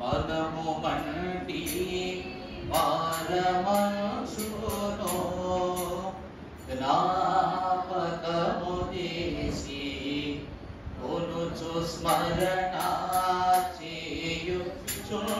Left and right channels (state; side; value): identical; both; correlation 1.00